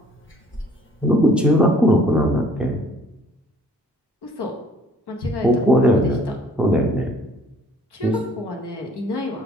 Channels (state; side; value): normal; both; correlation 0.57